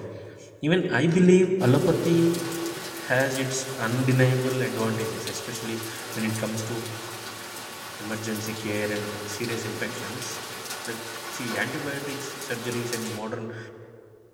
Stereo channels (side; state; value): both; identical; correlation 1.00